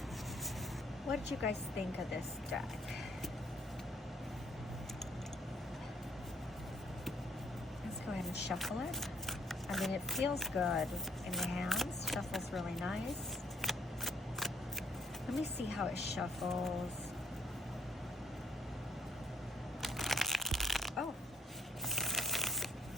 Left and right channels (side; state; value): both; normal; correlation 0.67